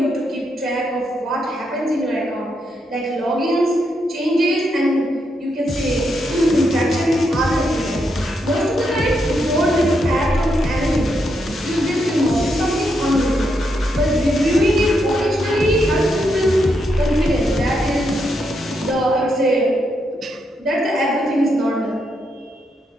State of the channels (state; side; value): normal; both; correlation 0.80